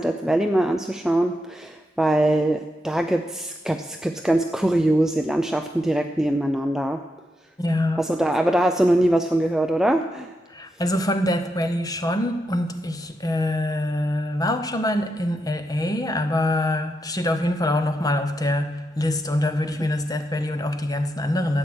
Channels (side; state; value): both; normal; correlation 0.84